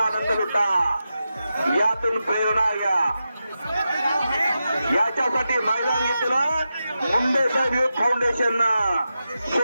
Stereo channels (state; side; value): inverted; both; correlation -0.90